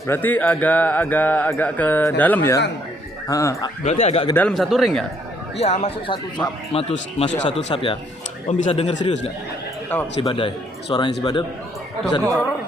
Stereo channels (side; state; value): both; normal; correlation 0.68